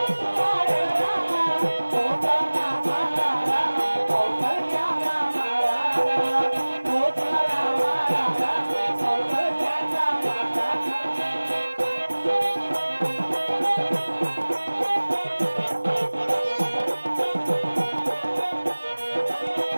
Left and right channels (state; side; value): inverted; both; correlation -1.00